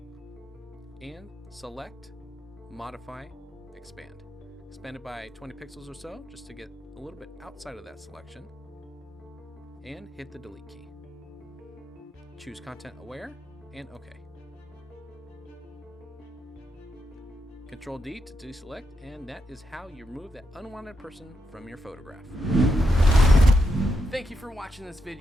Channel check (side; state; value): both; normal; correlation 0.83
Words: and select, modify, expand. Expand it by 20 pixels or so just to get a little bit outside of that selection, and hit the delete key. Choose content aware and OK. Control D to deselect, and that is how you remove that unwanted person from your photograph. Thank you for watching this